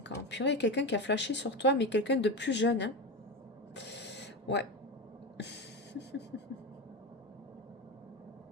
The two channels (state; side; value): normal; both; correlation 0.19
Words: ans. Purée, quelqu'un qui a flashé sur toi, mais quelqu'un de plus jeune. Hein. Ouais.